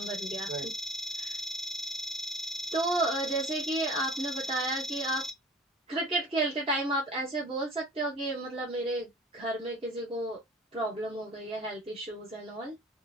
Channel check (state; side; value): normal; both; correlation 0.45